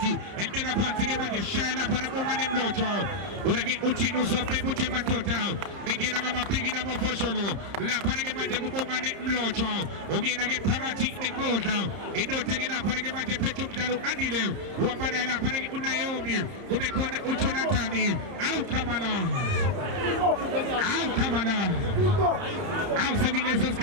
and then upon Tigamaja, Shana, Panagoman and Locho, when I get Uchino, Pepuchema Tota, begin on a pig in a Mofosholo, La Panagamaja Guboman and Locho, again I get Pagati. Kota, ino tegela panage manje Petro Mzalo Andile, Wapana panage Unayomi, Kumekona Uchonatani, Au Kamala, Au Savilesos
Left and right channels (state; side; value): late; left; 30 ms